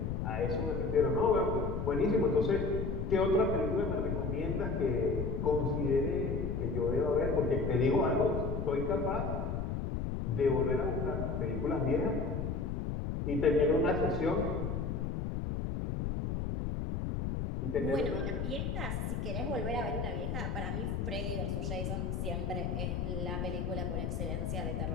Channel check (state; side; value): noise; left; rumble, 1 dB below the sound